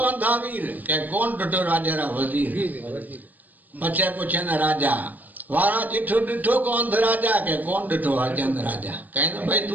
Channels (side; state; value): left; late; 0.083 ms